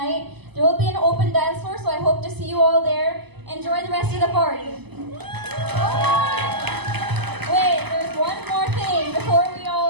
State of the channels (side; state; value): left; late; 0.99 ms